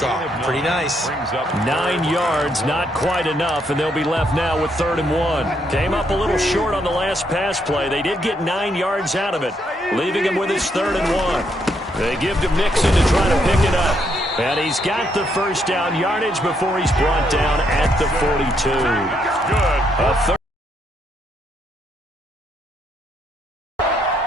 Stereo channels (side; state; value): both; normal; correlation 0.75